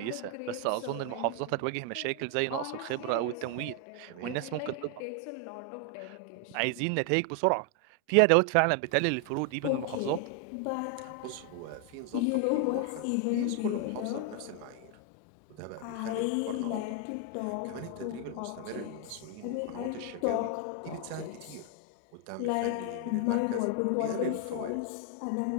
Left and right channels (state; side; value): different; both; correlation 0.00